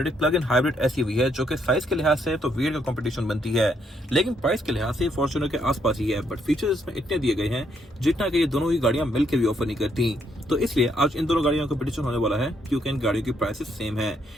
एक प्लग इन हाइब्रिड SUV है जो कि साइज के लिहाज से तो वीर का कंपटीशन बनती है, लेकिन प्राइस के लिहाज से फॉर्च्यूनर के आसपास ही है। बट फीचर्स इसमें इतने दिए गए हैं जितना कि ये दोनों ही गाड़ियां मिलकर भी ऑफर नहीं करती। तो इसलिए आज इन दोनों गाड़ियों का कंपटीशन होने वाला है, क्योंकि इन गाड़ियों की प्राइसेस सेम है।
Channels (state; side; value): normal; both; correlation 0.74